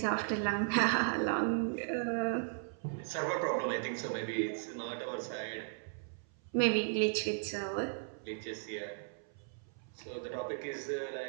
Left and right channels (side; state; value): left; silent; 54 dB below the other